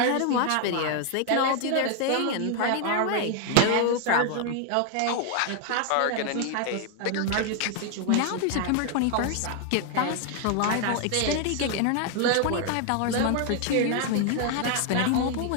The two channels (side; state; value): both; different; correlation 0.00